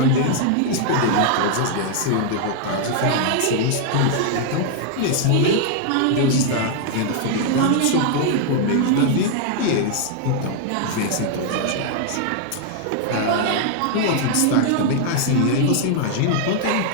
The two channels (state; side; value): different; both; correlation 0.00